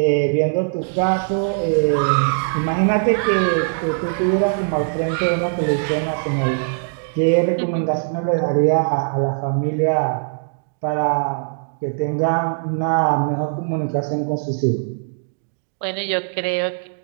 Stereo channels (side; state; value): left; silent; digital silence